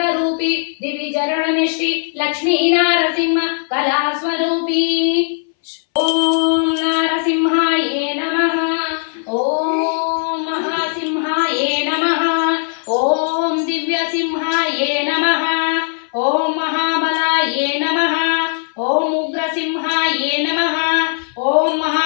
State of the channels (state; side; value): silent; right; 63 dB below the other